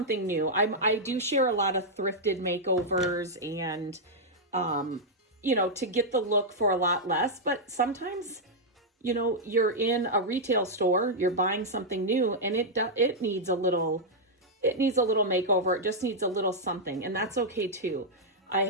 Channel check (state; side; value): normal; both; correlation -0.05